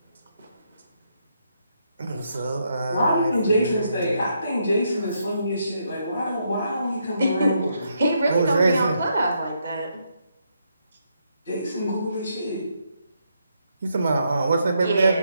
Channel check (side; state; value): both; inverted; correlation -0.77